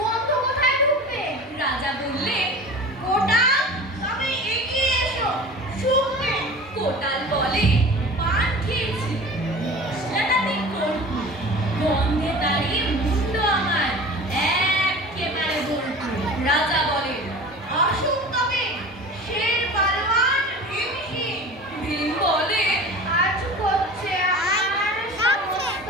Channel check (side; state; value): both; normal; correlation 0.38